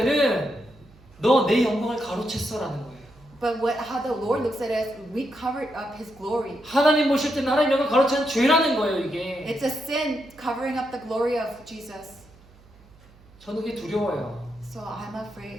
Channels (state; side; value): noise; right; hum, 26 dB below the sound